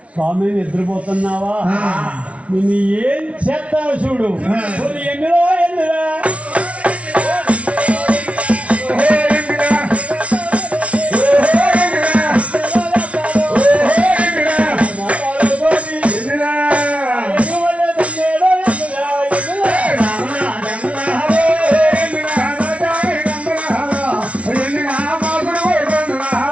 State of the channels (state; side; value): late; left; 0.063 ms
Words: స్వామి నిద్రపోతున్నావా? నిన్ను ఏం చేస్తావు చూడు. ఎందులో ఎందురా